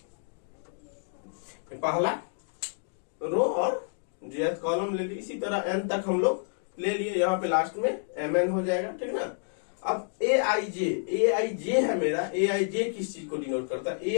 पहला रो और jth कॉलम ले लिए। इसी तरह n तक हम लोग ले लिए। यहाँ पे लास्ट में mn हो जाएगा। ठीक ना? अब aij है मेरा। aij किस चीज को डिनोट करता है?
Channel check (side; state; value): right; silent; digital silence